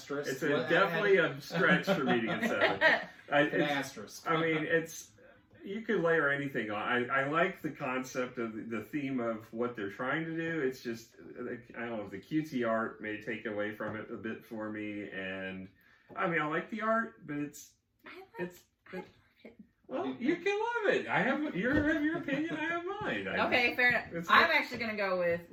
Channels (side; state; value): both; identical; correlation 1.00